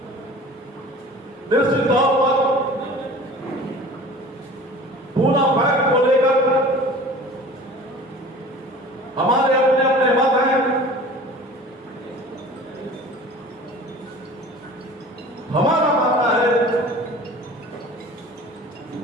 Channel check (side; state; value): both; normal; correlation 0.42